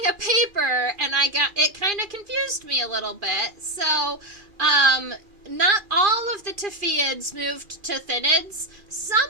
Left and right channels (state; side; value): late; left; 2.4 ms